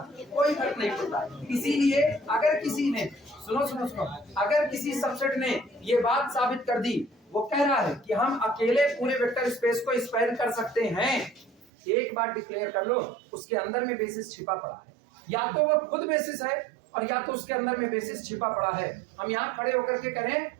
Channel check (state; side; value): drops out; left; at 11.7 s